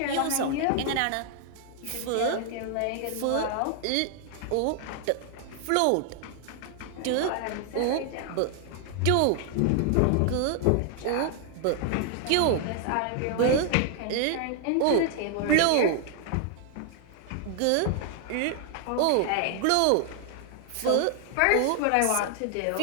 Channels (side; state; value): both; different; correlation 0.00